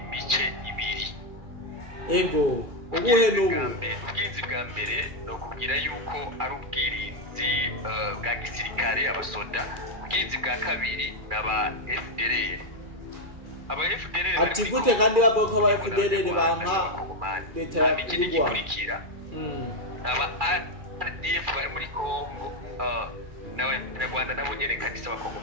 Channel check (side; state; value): left; late; 2.4 ms